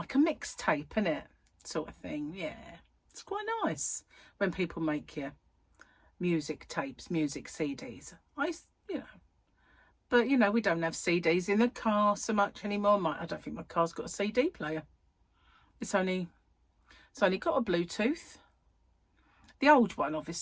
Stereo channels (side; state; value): both; identical; correlation 1.00